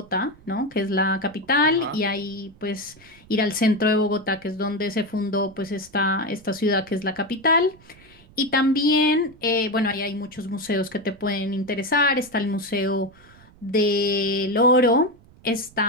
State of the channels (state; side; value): noise; right; rumble, 25 dB below the sound